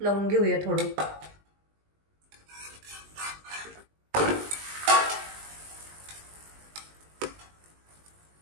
लावून घेऊया थोडं.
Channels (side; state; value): left; late; 20 ms